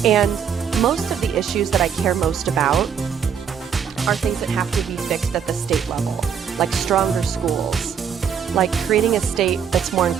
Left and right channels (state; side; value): quieter; left; 7.5 dB